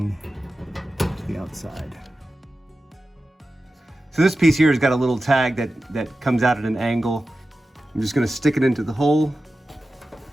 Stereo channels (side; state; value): both; normal; correlation 0.94